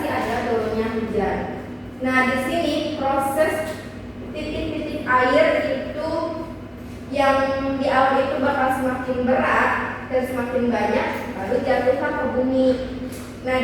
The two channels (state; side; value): identical; both; correlation 1.00